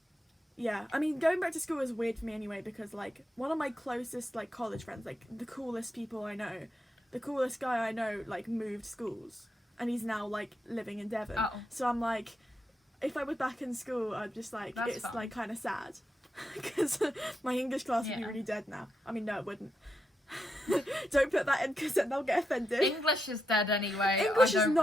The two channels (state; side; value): normal; both; correlation 0.84